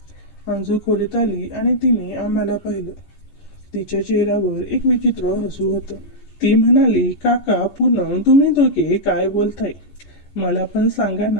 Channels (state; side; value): late; right; 14 ms